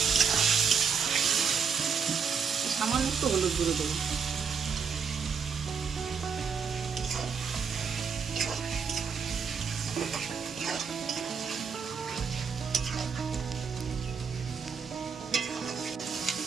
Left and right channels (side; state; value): left; quieter; 6.1 dB